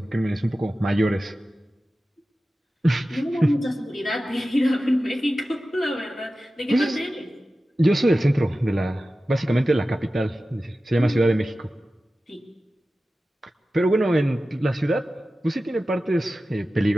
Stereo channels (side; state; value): both; normal; correlation 0.95